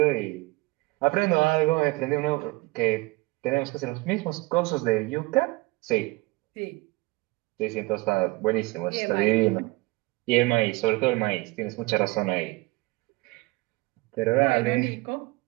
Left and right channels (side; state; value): left; quieter; 23.4 dB